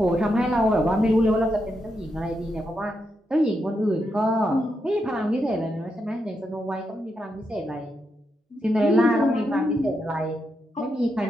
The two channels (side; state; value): both; normal; correlation 0.83